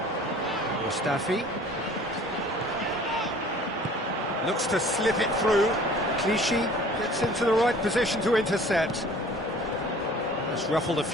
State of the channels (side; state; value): both; normal; correlation 0.49